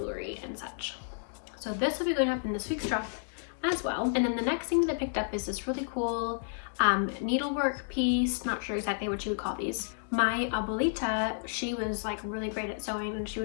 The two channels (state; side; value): silent; right; digital silence